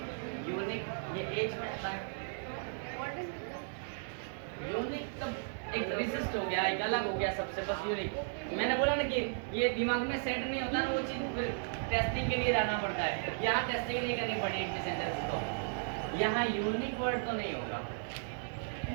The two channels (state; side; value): silent; left; digital silence